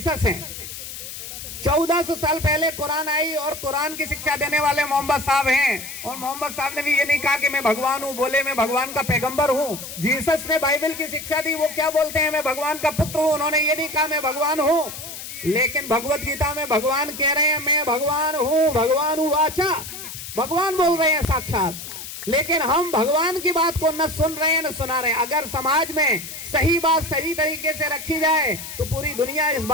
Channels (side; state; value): left; noise; hiss, 10 dB below the sound